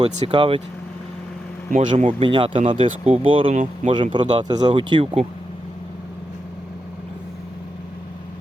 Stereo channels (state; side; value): normal; both; correlation 0.86